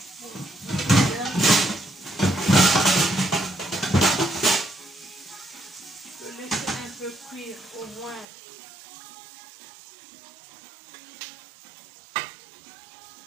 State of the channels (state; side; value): drops out; left; at 8.2 s